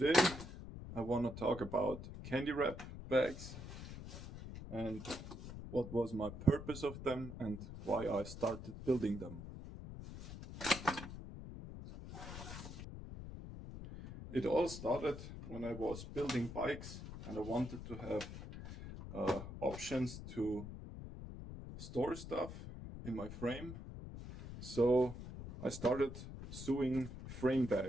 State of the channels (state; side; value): noise; left; rumble, 10 dB below the sound